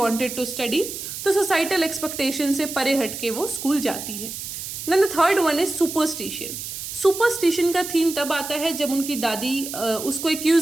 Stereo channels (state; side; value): noise; right; hiss, 8 dB below the sound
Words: to study, तो सोसाइटल एक्सपेक्टेशन से परे हट के वो स्कूल जाती है। Then the third one is superstition. Superstition का थीम तब आता है जब उनकी दादी उसको